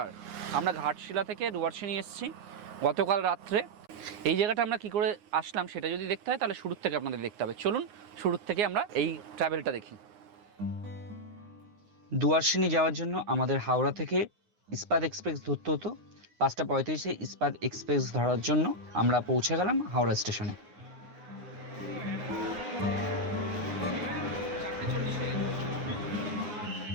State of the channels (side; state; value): left; late; 9.7 ms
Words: আমরা ঘাটশিলা থেকে দুয়ারসিনি এসেছি গতকাল রাত্রে। এই জায়গাটা আমরা কী করে আসলাম সেটা যদি দেখতে হয় তাহলে শুরুর থেকে আপনাদের দেখতে হবে। চলুন শুরুর থেকে আমরা এই ট্রাভেলটা দেখি। দুয়ারসিনি যাওয়ার জন্য আমাদের হাওড়া থেকে ইস্পাত এক্সপ্রেস ধরতে হতো। 5:35 ইস্পাত এক্সপ্রেস ধরার জন্য আমরা পৌঁছে গেলাম হাওড়া স্টেশনে।